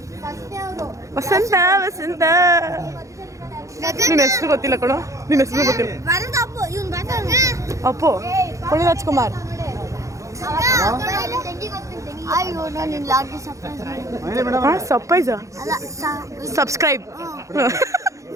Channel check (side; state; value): left; late; 0.15 ms